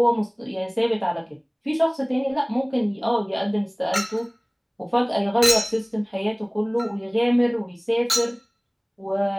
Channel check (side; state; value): both; identical; correlation 1.00